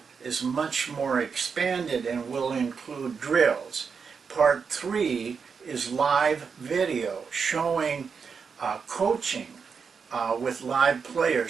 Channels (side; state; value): left; quieter; 5.8 dB